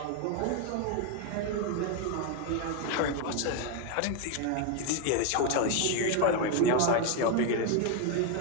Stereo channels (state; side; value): different; both; correlation 0.01